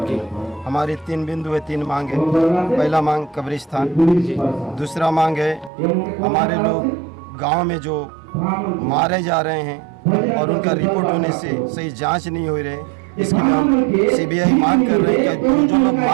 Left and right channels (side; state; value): left; drops out; at 5.7 s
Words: हमारी 3 बिंदु है, 3 मांग है। पहला मांग कब्रिस्तान, दूसरा मांग है हमारे लोग गांव में जो मारे जा रहे हैं और उनका रिपोर्ट होने से सही जांच नहीं हो रही, इसके लिए हम सीबीआई मांग कर रहे हैं कि जो लोग